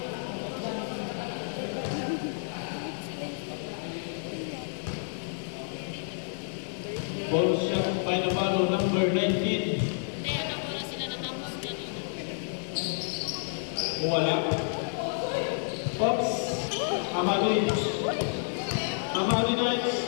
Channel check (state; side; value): silent; right; digital silence